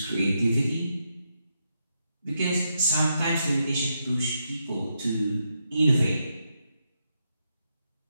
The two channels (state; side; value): inverted; both; correlation -0.83